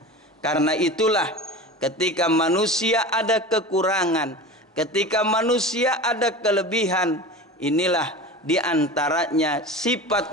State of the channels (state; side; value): normal; both; correlation 0.32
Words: Karena itulah ketika manusia ada kekurangan, ketika manusia ada kelebihan, inilah di antaranya